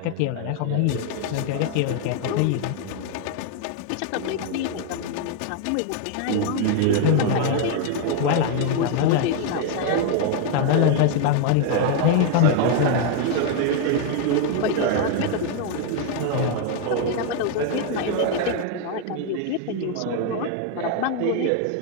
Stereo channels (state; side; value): different; both; correlation 0.01